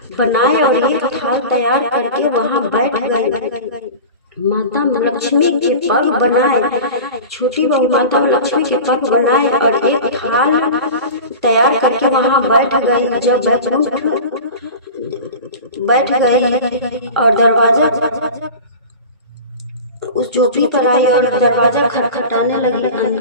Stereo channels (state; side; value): inverted; both; correlation -0.33